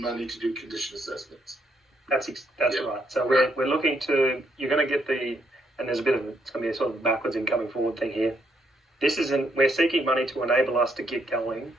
money to do condition assessments. That's right. So we're looking to, you're going to get and there's a bit of it's going to be a sort of backwards and coming forward thing here. We're seeking money to enable us to get going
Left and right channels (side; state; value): both; normal; correlation 0.74